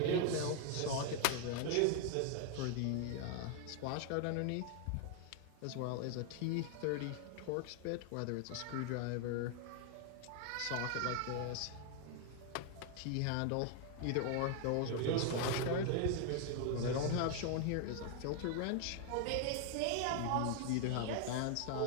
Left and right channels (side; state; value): both; different; correlation 0.00